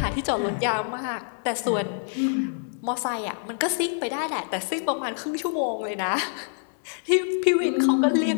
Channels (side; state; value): right; silent; 59 dB below the other